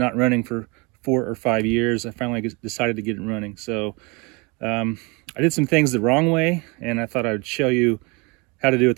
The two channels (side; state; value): left; quieter; 28.7 dB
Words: running for 4 or 5 years. I finally decided to get it running. So I did some things the wrong way, and I thought I'd show you how to do it